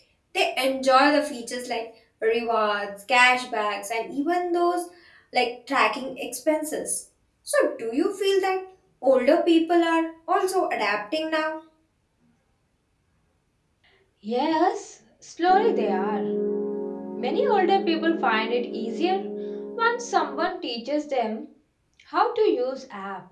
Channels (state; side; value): identical; both; correlation 1.00